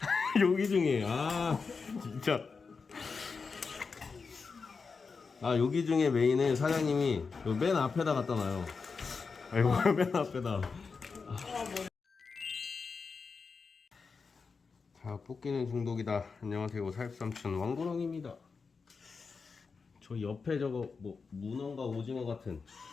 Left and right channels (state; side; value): quieter; right; 4.9 dB